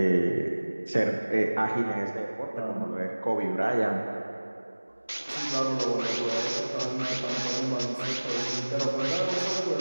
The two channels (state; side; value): inverted; both; correlation -1.00